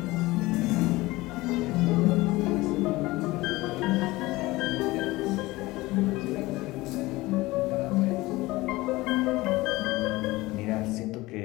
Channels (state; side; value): quieter; right; 20.1 dB